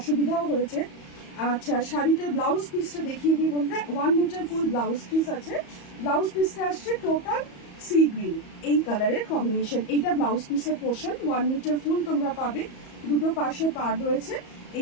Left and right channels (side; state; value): right; late; 34 ms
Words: হয়েছে। আচ্ছা, শাড়িটার ব্লাউজ পিসটা দেখিয়ে দিই বন্ধুরা। 1 মিটার ফুল ব্লাউজ পিস আছে, ব্লাউজ পিসটা আসছে টোটাল সি গ্রিন এই কালারের কম্বিনেশন। এইটা ব্লাউজ পিসের পোর্শন, 1 মিটার ফুল তোমরা পাবে, দুটো পাশে পাড় রয়েছে।